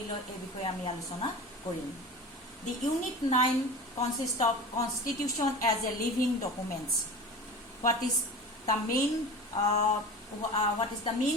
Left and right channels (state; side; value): normal; both; correlation 0.34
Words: লয় এই বিষয়ে আমি আলোচনা কৰিম The Unit 9 consists of Constitution as a living documents. What is the main